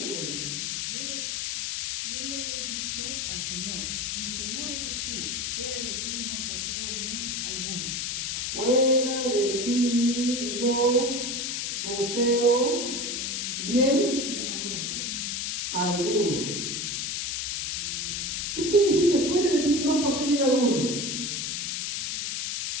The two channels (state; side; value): noise; left; hiss, 1 dB below the sound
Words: Yo lo he dicho al Señor, mi Señor eres tú, fuera de ti no poseo bien alguno. Fuera de ti no poseo bien Bien alguno. alguno. ¿Qué quiere decir que fuera de ti no poseo bien alguno?